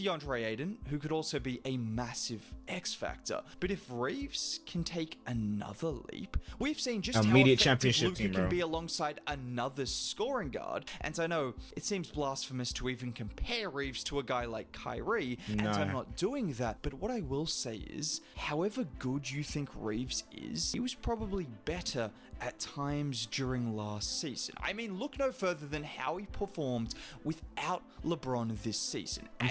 Ayton, who could also be a massive X factor. But if Reeves can take another leap, we've seen just immediate how championship team, bro, can be alongside another scoring guard. And I know it seems blasphemous to even compare Reeves to a guy like Kyrie, and I'm not doing that, but what I will say is, however good you think Reeves is, he was probably better at times during last season. I mean, look no further than how he performed without LeBron this season. I'm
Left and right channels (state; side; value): identical; both; correlation 1.00